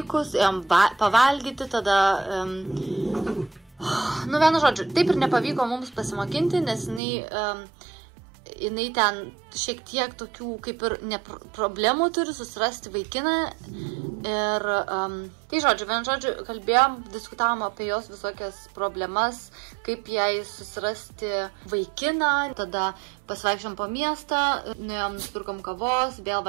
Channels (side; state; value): left; drops out; at 7.0 s